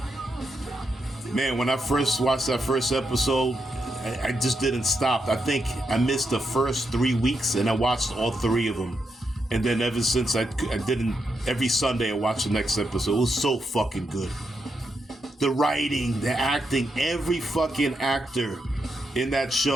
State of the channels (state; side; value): normal; both; correlation 0.83